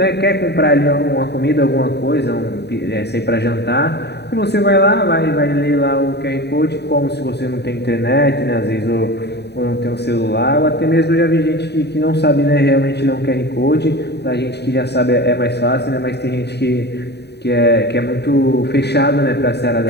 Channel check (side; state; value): right; late; 0.49 ms